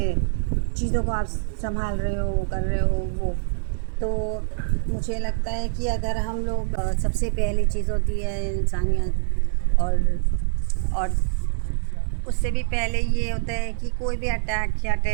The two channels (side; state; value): left; silent; digital silence